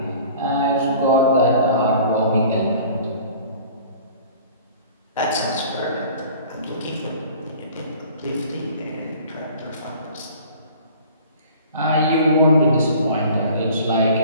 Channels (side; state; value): both; inverted; correlation -0.48